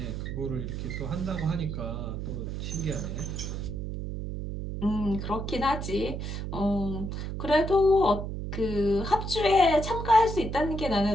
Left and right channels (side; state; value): right; noise; hum, 5 dB below the sound